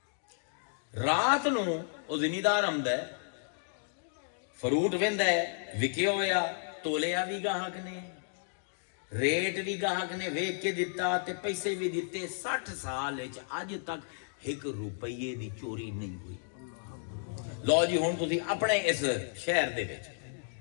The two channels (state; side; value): silent; right; digital silence